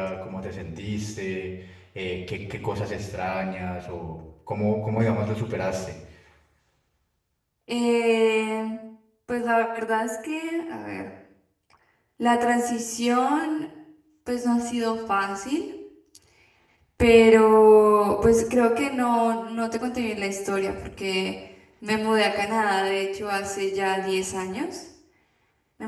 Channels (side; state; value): both; identical; correlation 1.00